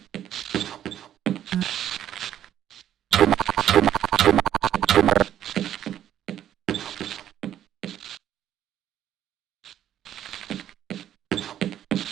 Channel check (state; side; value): quieter; left; 11.0 dB